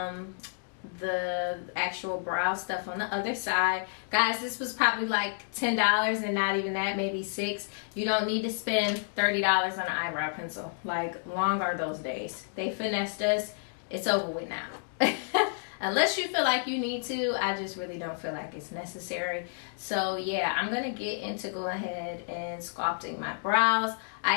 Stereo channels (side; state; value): right; silent; digital silence